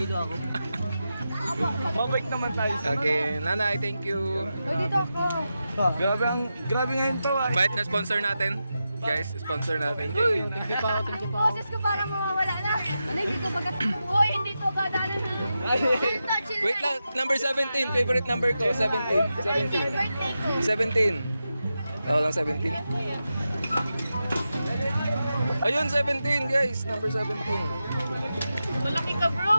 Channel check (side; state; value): both; inverted; correlation -0.90